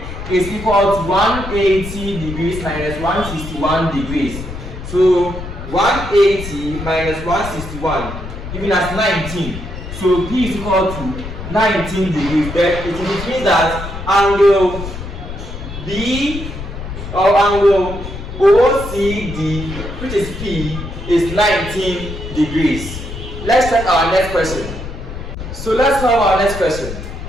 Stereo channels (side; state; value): left; noise; rumble, 9 dB below the sound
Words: is equal to 180 degrees minus 161 degrees. So 180 minus 161 giving us 19. So P is equal to 19 degrees. Then it means that angle B or angle OCD, which is P, is 19 degrees. Let's check our next question. So let's solve our next question.